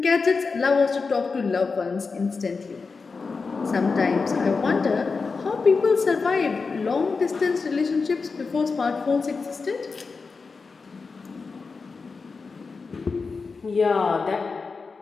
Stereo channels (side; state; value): right; quieter; 4.6 dB